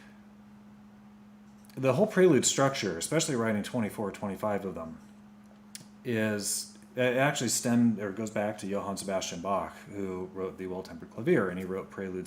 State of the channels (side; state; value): both; identical; correlation 1.00